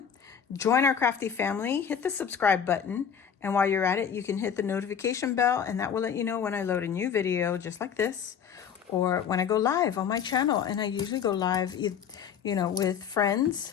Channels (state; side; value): quieter; right; 7.7 dB